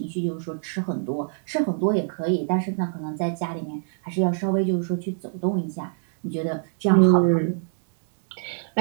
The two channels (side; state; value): left; silent; 62 dB below the other